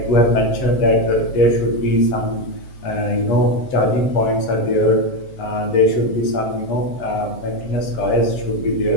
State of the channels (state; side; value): late; right; 7.6 ms